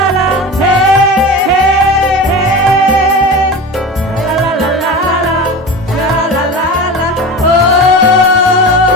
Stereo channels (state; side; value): normal; both; correlation 0.30